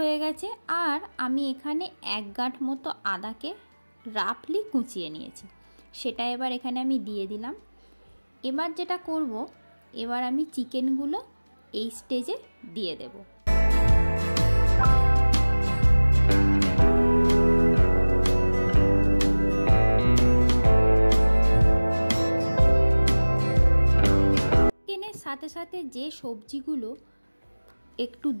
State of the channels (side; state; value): both; inverted; correlation -1.00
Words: গেছে, আর আমি এখানে 1 গাঁট মতো আদাকে রাফলি কুচিয়ে নিয়েছি, সেটা এবার এখানে আমি দিয়ে দিলাম। এবার যেটা করব, এবার আমি চিকেনগুলো এই স্টেজে দিয়ে দেব। চিকেনের সাথে সাথে যে সবজিগুলো একটু